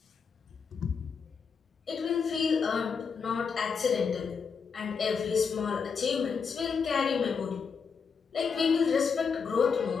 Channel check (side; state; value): right; quieter; 5.8 dB